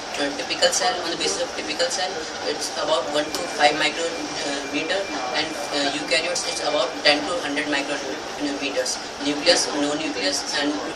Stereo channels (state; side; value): identical; both; correlation 1.00